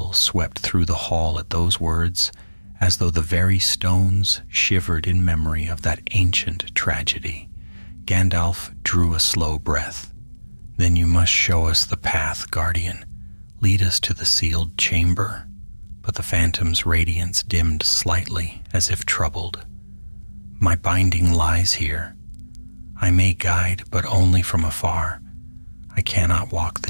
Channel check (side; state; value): both; inverted; correlation -1.00